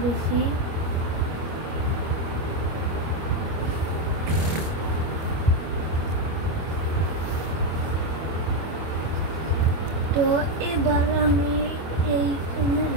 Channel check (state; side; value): late; left; 25 ms